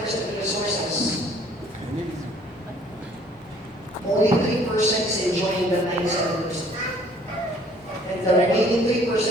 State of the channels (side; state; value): both; normal; correlation 0.57